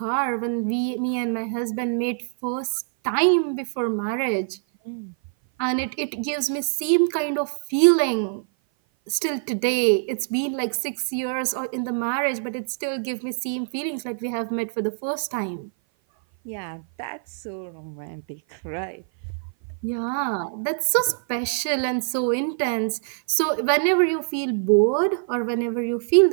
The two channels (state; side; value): silent; left; 56 dB below the other